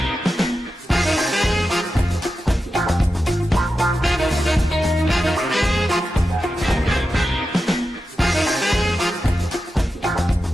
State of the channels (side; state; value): both; normal; correlation 0.90